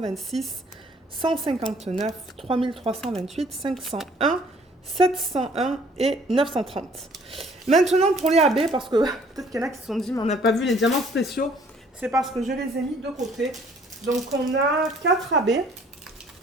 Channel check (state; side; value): normal; both; correlation 0.58